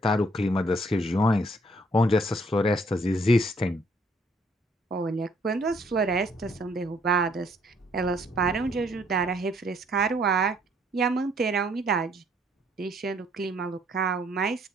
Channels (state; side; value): normal; both; correlation 0.65